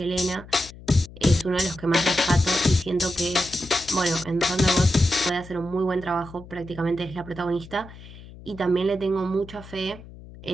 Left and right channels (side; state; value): left; noise; hum, 17 dB below the sound